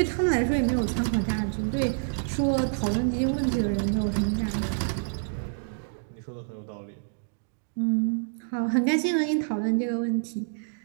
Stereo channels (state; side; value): silent; left; digital silence